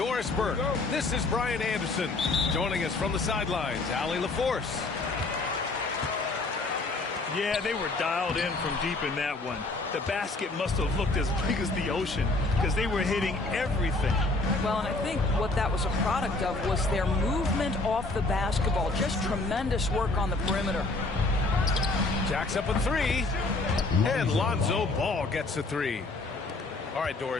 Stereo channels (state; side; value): quieter; right; 3.2 dB